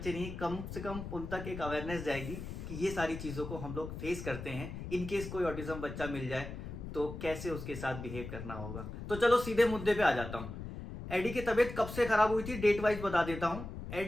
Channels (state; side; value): noise; left; rumble, 8 dB below the sound